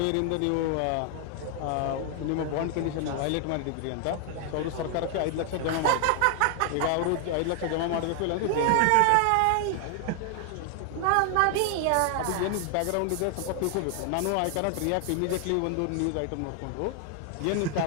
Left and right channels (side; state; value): both; different; correlation 0.00